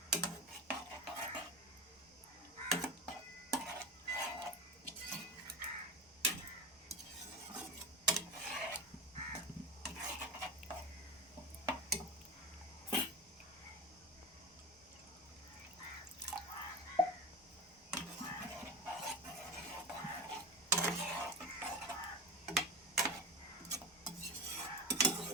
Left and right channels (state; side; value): normal; both; correlation 0.25